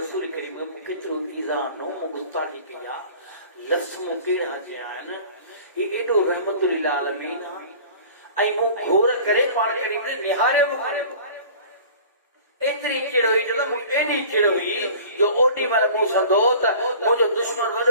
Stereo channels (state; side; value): inverted; both; correlation -0.43